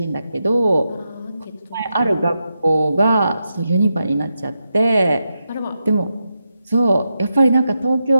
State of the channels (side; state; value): both; inverted; correlation -0.87